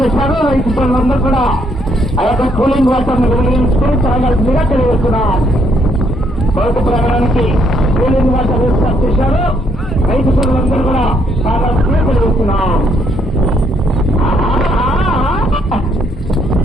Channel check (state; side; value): normal; both; correlation 0.71